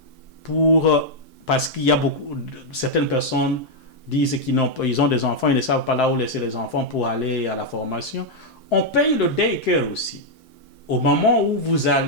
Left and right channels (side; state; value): right; late; 4.7 ms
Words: parce qu'il y a certaines personnes disent qu'ils ont des enfants, ils ne savent pas là où laisser les enfants pour aller à la formation, on paye le daycare aussi. Au moment où vous